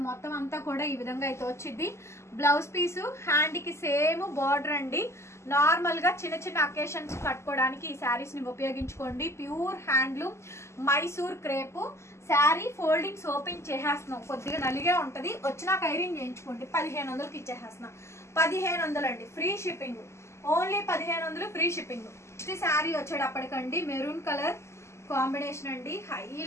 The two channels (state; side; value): late; right; 0.13 ms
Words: మొత్తం అంతా కూడా ఈ విధంగా అయితే వచ్చింది. బ్లౌజ్ పీసు హ్యాండ్కి సేమ్ బార్డర్ అండి. నార్మల్గా చిన్న అకేషన్స్ కట్టుకోవడానికి ఈ శారీస్ని ఉపయోగించుకోండి. Pure handloom Mysore crepe sari. Foldings open చేసేస్తున్నాం, కొద్దిగా నలిగే ఉంటుంది. వచ్చినాక ఐరన్ చేయించుకోండి. 1500కి ఇచ్చేసేస్తున్నాం. 1500 అండి, free shipping. Only 1500 free shipping. Next sari వచ్చేటప్పటికండి మెరూన్ కలర్ కాంబినేషన్ అండి.